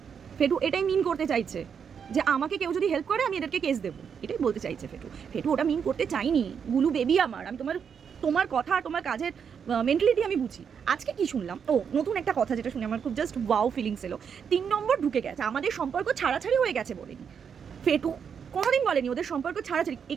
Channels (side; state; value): left; quieter; 7.1 dB